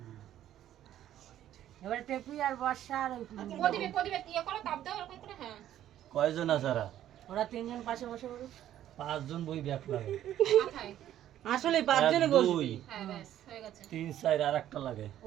এবারে টেপি আর বর্ষা আর কয়জন আছারা? ওরা তিনজন পাশে বসে পড়ুক। 5 জন বই ব্যাগ লাগে। আসলে 5 জনে বসবি। 3 4 আর একটা লাগে।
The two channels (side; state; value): left; quieter; 11.9 dB